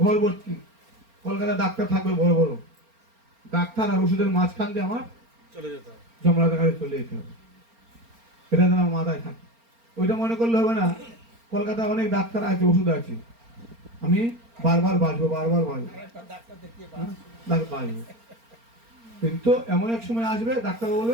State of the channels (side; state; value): left; late; 4.3 ms